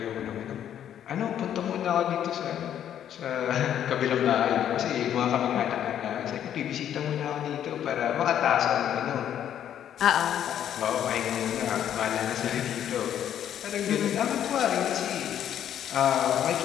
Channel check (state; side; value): quieter; right; 10.1 dB